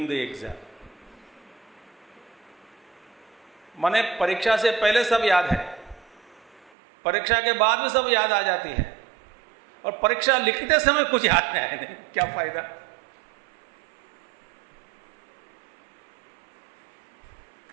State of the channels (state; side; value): drops out; left; at 6.7 s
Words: the exam. माने परीक्षा से पहले सब याद है, परीक्षा के बाद में सब याद आ जाती है, और परीक्षा लिखते समय कुछ याद नहीं आया, नहीं क्या फायदा?